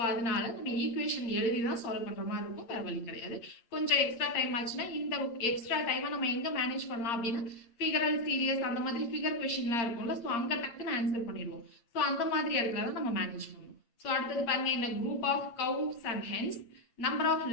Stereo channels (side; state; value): right; late; 8.6 ms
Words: அதனால நம்ம ஈக்குவேஷன் எழுதி தான் சால்வ் பண்ணுற மாதிரி இருக்கும். வேற வழி கிடையாது. கொஞ்சம் எக்ஸ்ட்ரா டைம் ஆச்சுன்னா இந்த எக்ஸ்ட்ரா டைமை நம்ம எங்கே மேனேஜ் பண்ணலாம் அப்படின்னா ஃபிகரல் சீரியஸ் அந்த மாதிரி ஃபிகர் கொஷின்லாம் இருக்கும்ல. ஸோ அங்கே டக்குன்னு ஆன்சர் பண்ணிடுவோம். ஸோ அந்த மாதிரி இடத்துல தான் நம்ம மேனேஜ் பண்ணுவோம். ஸோ அடுத்தது பாருங்க, இந்த group of cows and hens number of